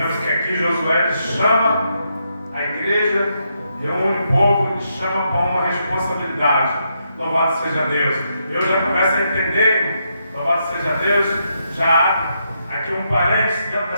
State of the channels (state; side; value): inverted; both; correlation -0.80